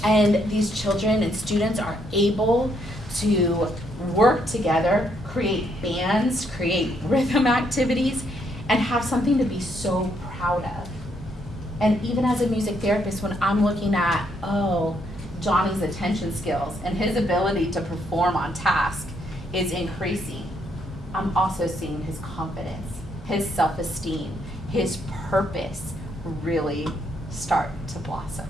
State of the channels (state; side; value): normal; both; correlation 0.73